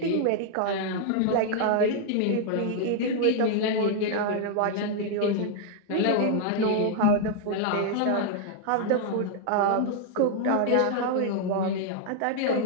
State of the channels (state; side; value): different; both; correlation 0.00